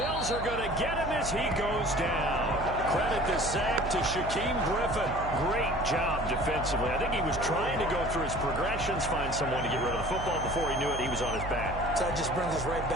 are going to get him as he goes down. Credit the sack to Shaquem Griffin. Great job defensively. I think he was trying to go through his progressions, find someone to get rid of the football. Before he knew it, he was on his back. So that just brings us right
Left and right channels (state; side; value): noise; right; hum, 8 dB below the sound